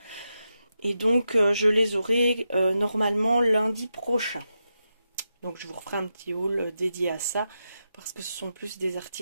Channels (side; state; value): both; inverted; correlation -0.88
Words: Et donc, je les aurai normalement lundi prochain. Donc, je vous referai un petit haul dédié à ça parce que ce sont plus des